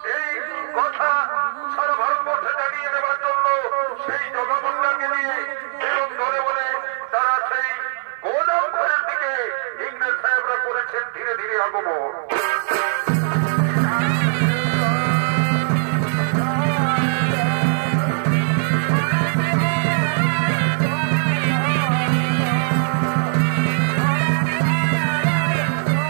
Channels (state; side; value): silent; left; 58 dB below the other